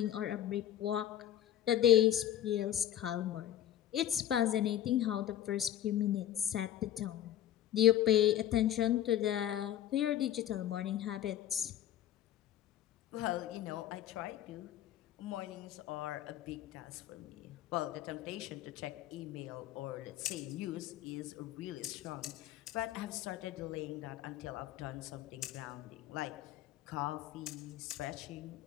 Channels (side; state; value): right; quieter; 11.8 dB